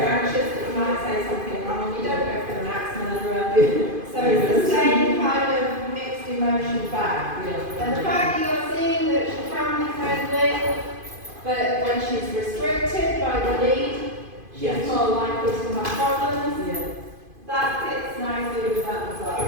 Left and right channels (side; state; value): left; late; 2.5 ms